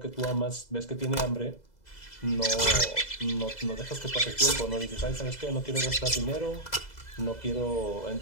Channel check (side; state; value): right; late; 2.0 ms